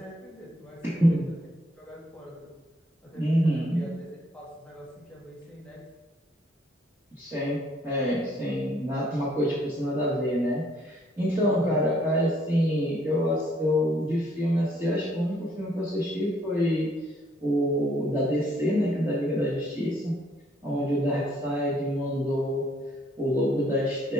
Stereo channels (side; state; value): both; normal; correlation 0.66